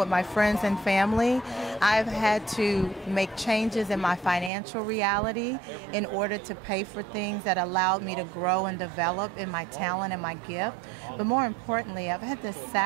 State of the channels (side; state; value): left; drops out; at 4.5 s